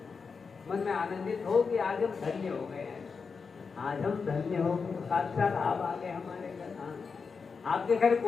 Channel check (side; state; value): right; quieter; 5.2 dB